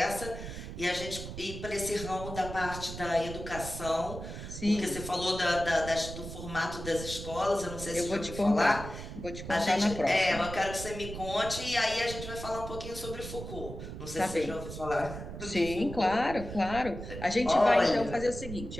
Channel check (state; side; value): noise; right; rumble, 9 dB below the sound